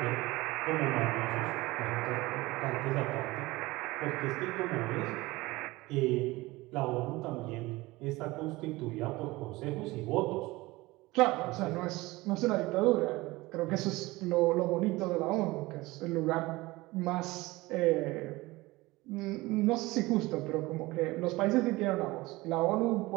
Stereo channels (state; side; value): quieter; left; 20.6 dB